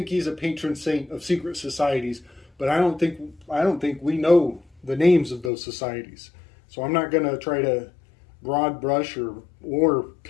he's a patron saint of secret societies, but I don't think we know the names of those societies. So I'm not going to try to broad brush or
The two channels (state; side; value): drops out; right; at 5.5 s